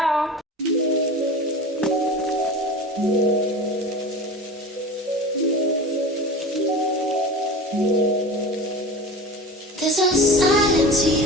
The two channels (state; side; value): normal; both; correlation 0.33